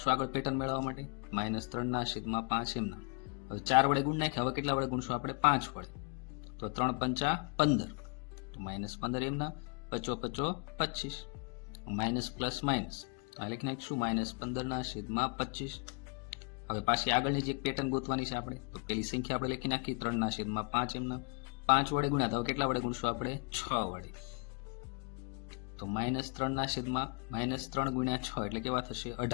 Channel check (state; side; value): quieter; right; 34.9 dB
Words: આગળ પેટર્ન મેળવવા માટે. -3/5 એમ નામ. હવે 4 વડે ગુણ નાખી. હવે કેટલા વડે ગુણશું આપણે? 5 વડે. તો 3 5 15. તો -15 એમ નામ. 5 5 25. Minus plus minus. તો આ લખી નાખીશું -15/25. હવે પાછી આગળની જે પેટર્ન ગોતવાની છે આપણે. તો પેલી સંખ્યા આપણે લખી નાખી 3/5 એમના. 5 વડે ગુણ્યા તો કેટલા વડે ગુણશું આપણે? 6 વડે. તો -3 ગુણ્યા 6 એટલે કેવા થશે?